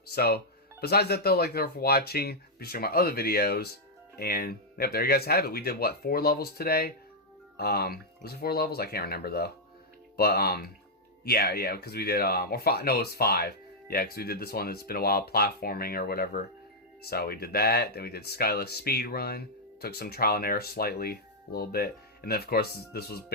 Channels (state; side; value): normal; both; correlation -0.04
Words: So, besides that though, like, thank you for watching. Be sure to my other videos. And, yep, there you guys have it. We did, 4 levels today? Was it 4 levels? I can't remember though. But, yeah, because we did, or 5, no, it was 5. Yeah, because we did this one that's been a while, platforming or whatever. So we did that. Then we did Skyless Speed Run. Took some trial and error slightly, a little bit. And then, of course, this was